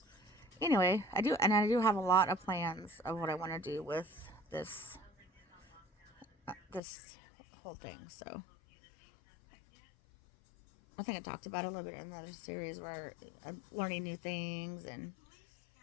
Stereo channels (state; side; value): drops out; right; at 6.8 s